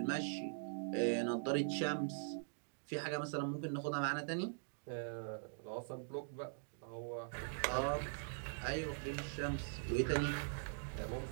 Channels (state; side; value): silent; left; digital silence